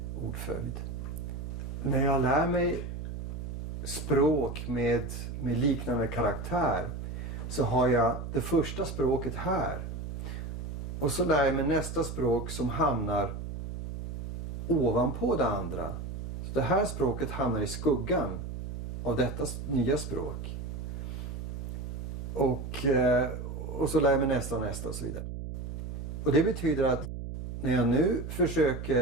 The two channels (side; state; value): right; noise; hum, 7 dB below the sound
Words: ordföljd. När jag lär mig språk med liknande karaktär så har jag det första språket här. Och så lär jag mig nästa språk som hamnar ovanpå det andra. Så det här språket hamnar i skuggan av detta nya språk. Och så lär jag mig nästa och nästa och så vidare. Och det betyder att när jag nu